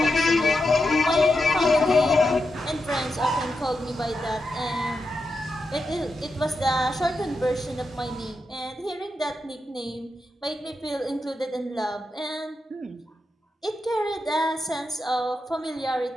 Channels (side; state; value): both; normal; correlation 0.87